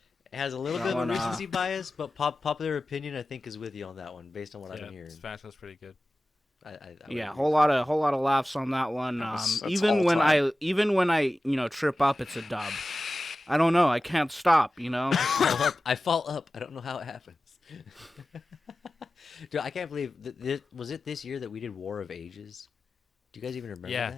has a little bit of a one, recency bias, but popular opinion, I think, is with you on that one, based on what I've Yeah, been hearing. Spatula's pretty good. Yeah, whole lot of laughs on that one. That's Even when I trip up, it's a dub. I don't know. I can't stop. I fall up. I don't know how it happens. Dude, I can't believe was it this year that we did War of Ages? Do you guys even remember Yeah,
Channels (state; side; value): normal; both; correlation 0.95